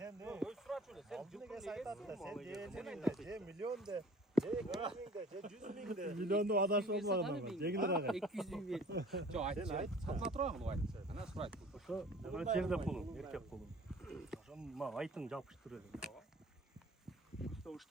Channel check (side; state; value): both; normal; correlation 0.48